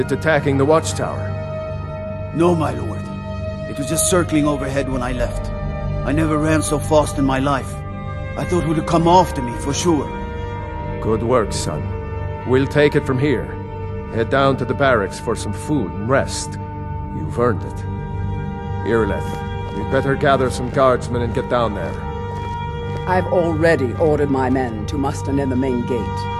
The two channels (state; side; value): identical; both; correlation 1.00